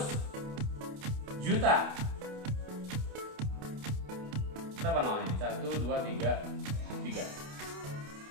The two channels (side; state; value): left; late; 28 ms